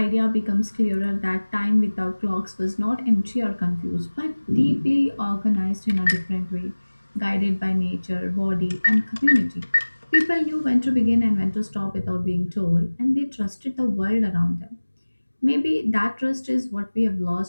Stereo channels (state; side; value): inverted; both; correlation -1.00